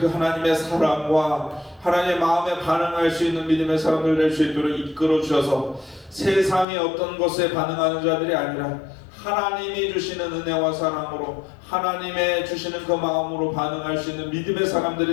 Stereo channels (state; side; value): drops out; right; at 6.7 s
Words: 하나님의 사랑과 하나님의 마음에 반응할 수 있는 믿음의 사람들 될 수 있도록 이끌어 주셔서 세상의 어떤 것에 반응하는 자들이 아니라 하나님이 주시는 은혜와 사랑으로 하나님의 주시는 그 마음으로 반응할 수 있는 믿음의